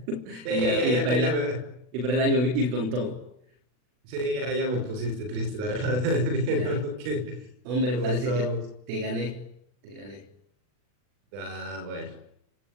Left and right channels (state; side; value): late; left; 40 ms